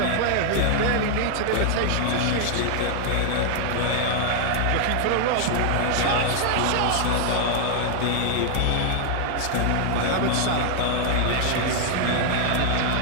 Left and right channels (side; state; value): both; different; correlation 0.00